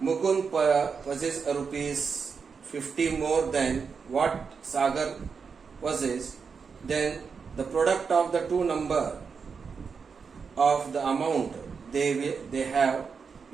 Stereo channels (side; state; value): left; quieter; 5.6 dB